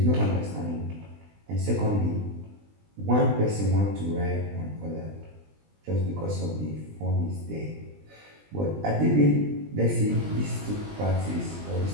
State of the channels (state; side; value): late; left; 20 ms